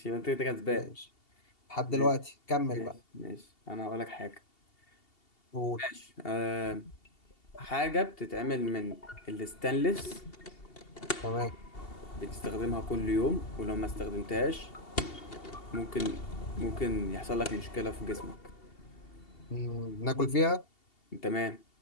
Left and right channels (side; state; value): right; late; 2.7 ms